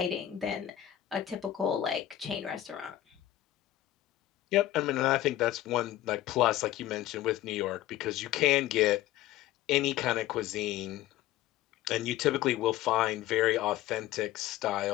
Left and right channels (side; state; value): right; quieter; 13.7 dB